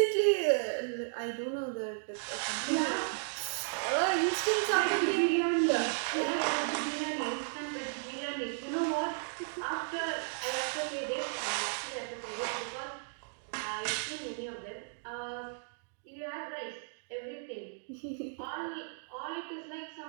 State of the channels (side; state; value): left; silent; digital silence